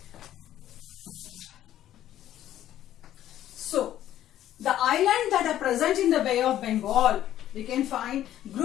So the islands that are present in the Bay of Bengal, we can find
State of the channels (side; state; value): right; quieter; 12.2 dB